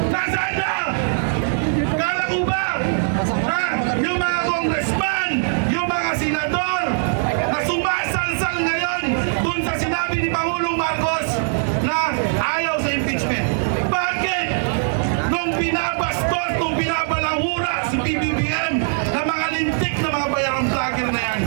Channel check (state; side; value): silent; left; digital silence